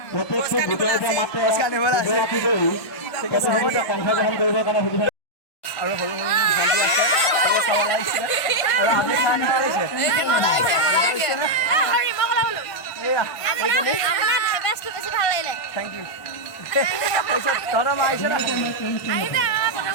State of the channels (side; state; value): right; late; 1.5 ms